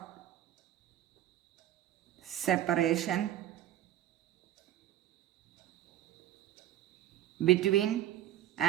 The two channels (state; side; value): quieter; left; 12.4 dB